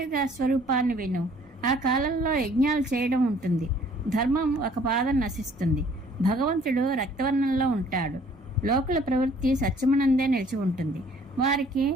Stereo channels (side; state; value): both; normal; correlation 0.57